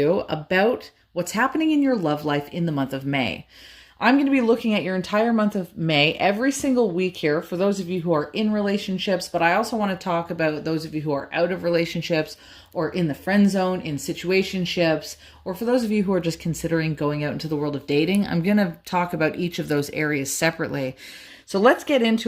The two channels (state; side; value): identical; both; correlation 1.00